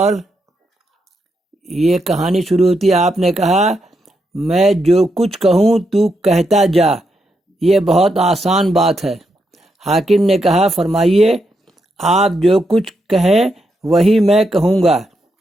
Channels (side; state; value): both; normal; correlation 0.82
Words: یہ کہانی شروع ہوتی ہے، آپ نے کہا میں جو کچھ کہوں تو کہتا جا، یہ بہت آسان بات ہے۔ حاکم نے کہا فرمائیے، آپ جو کچھ کہیں وہی میں کہوں گا۔